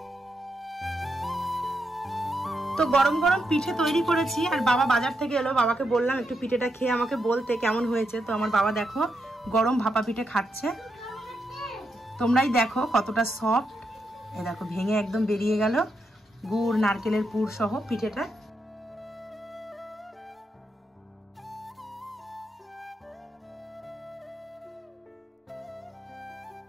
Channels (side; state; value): both; normal; correlation 0.83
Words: তো গরম গরম পিঠে তৈরি করেছি, আর বাবা বাজার থেকে এলো। বাবাকে বললাম একটু পিঠেটা খেয়ে আমাকে বলতে কেমন হয়েছে। তো আমার বাবা দেখো গরম ভাপা পিঠে খাচ্ছে। তোমরাই দেখো কতটা সফট, এ দেখো ভেঙে একদম বেরিয়ে গেল গুড় নারকেলের পুর সহ পিঠেটা।